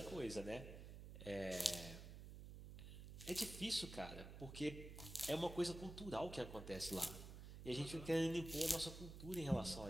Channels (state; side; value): noise; right; hum, 10 dB below the sound